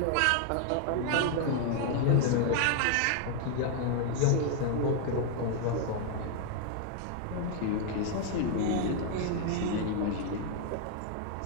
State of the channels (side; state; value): both; different; correlation 0.00